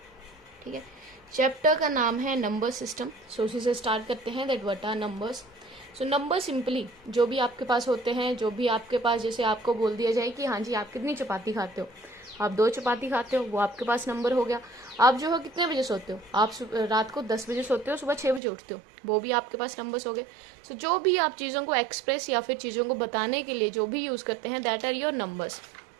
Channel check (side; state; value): left; drops out; at 18.4 s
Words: ठीक है, चैप्टर का नाम है नंबर सिस्टम। सो उसी से स्टार्ट करते हैं, that what are numbers. So number simply जो भी आपके पास होते हैं, जो भी आपके पास, जैसे आपको बोल दिया जाए कि हाँ जी आप कितनी चपाती खाते हो, आप 2 चपाती खाते हो, वो आपके पास नंबर हो गया। आप जो है कितने बजे सोते हो, आप रात को 10 बजे सोते हो, सुबह 6 बजे उठते हो, वो भी आपके पास नंबर्स हो गए। सो जो भी आप चीज़ों को एक्सप्रेस या फिर चीज़ों को बताने के लिए जो भी यूज़ करते हैं, दैट आर योर नंबर्स।